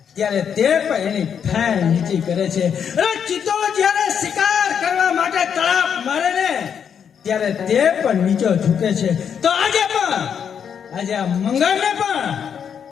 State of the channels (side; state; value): right; quieter; 7.7 dB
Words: ત્યારે તે પણ એની ફેણ નીચી કરે છે. અને ચિત્તો જ્યારે શિકાર કરવા માટે તળાપ મારે ને ત્યારે તે પણ નીચો ઝૂકે છે. તો આજે આ મંગળને પણ